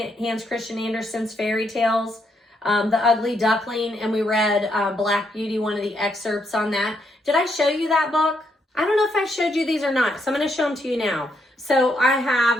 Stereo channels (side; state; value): both; normal; correlation 0.76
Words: Christian Andersen's fairy tales, The Ugly Duckling, and we read Black Beauty, one of the excerpts on that. Did I show you that book? I don't know if I showed you these or not, so I'm going to show them to you now. So I